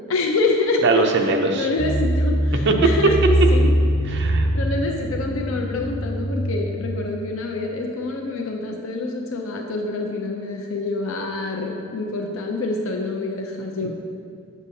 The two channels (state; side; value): normal; both; correlation 0.46